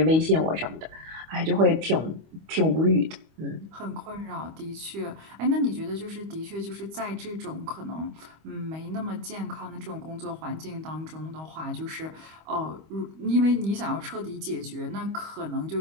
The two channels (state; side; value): late; left; 25 ms